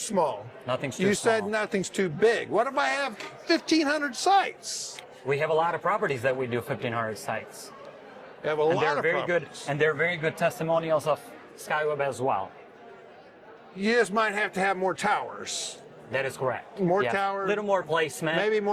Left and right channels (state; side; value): identical; both; correlation 1.00